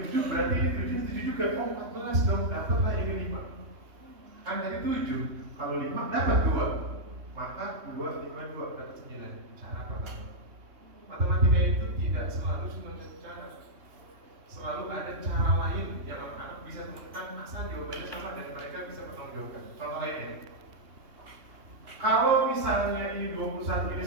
7, berarti ini 7, ini 7 juga. Oh, 14 dong, dapatlah ini 5. Kan tadi 7, kalau 5 dapat 2. Maka 2, 5, 2, dapat 9. Cara pertama. Matematika itu tidak selalu cuma satu cara. Selalu ada cara lain yang anak-anak bisa temukan asal jawabannya sama dan mereka bisa bertanggung jawab. Contoh lainnya, kalau misalnya ini 21, ini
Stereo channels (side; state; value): left; late; 3.2 ms